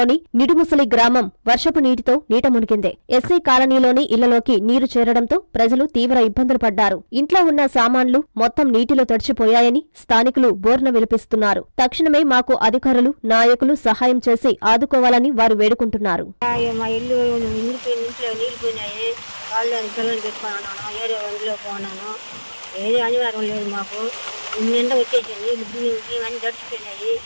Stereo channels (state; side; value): inverted; both; correlation -1.00